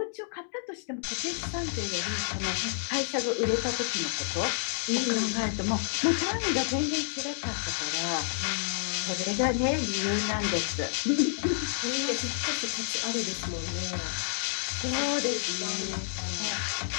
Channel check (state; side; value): silent; right; digital silence